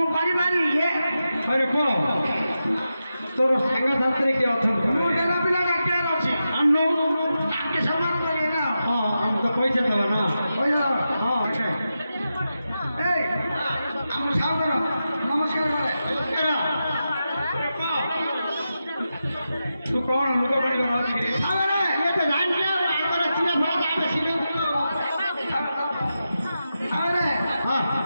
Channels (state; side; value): inverted; both; correlation -0.90